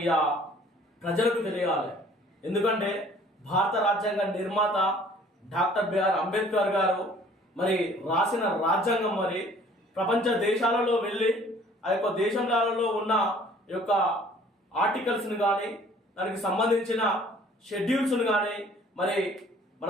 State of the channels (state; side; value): normal; both; correlation 0.54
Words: ప్రజలకు తెలియాలి. ఎందుకంటే భారత రాజ్యాంగ నిర్మాత డాక్టర్ బిఆర్ అంబేద్కర్ గారు మరి రాసిన రాజ్యాంగం మరి ప్రపంచ దేశాలలో వెళ్ళి ఆ యొక్క దేశాలలో ఉన్న యొక్క ఆర్టికల్స్ని కానీ దానికి సంబంధించిన షెడ్యూల్స్ను కానీ మరి మన